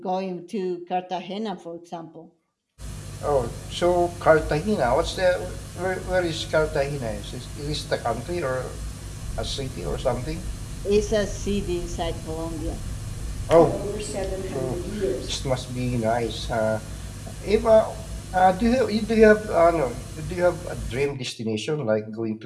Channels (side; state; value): both; identical; correlation 1.00